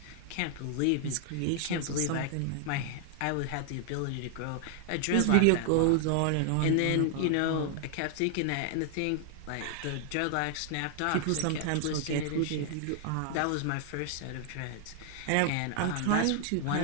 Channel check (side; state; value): both; different; correlation 0.00